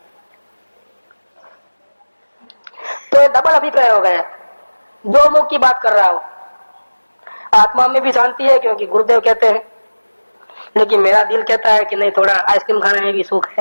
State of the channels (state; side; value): inverted; both; correlation -1.00